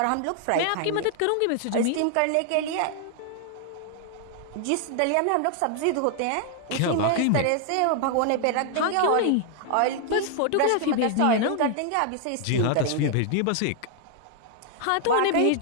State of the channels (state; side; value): different; both; correlation 0.00